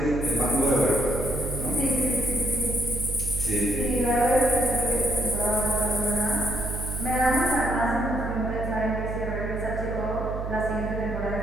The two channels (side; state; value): right; noise; hum, 5 dB below the sound